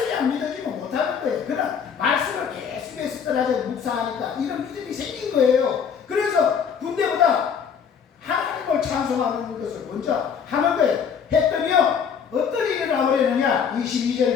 안 믿어지면 못하는 거예요. 그러나 말씀을 계속해서 떠나서 묵상하니까 이런 믿음이 생긴 거예요. 그래서 군대보다 하나님을 찬송하는 것을 먼저 하는 거예요. 했더니요. 어떤 일이 나버리느냐?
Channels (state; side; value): quieter; right; 7.0 dB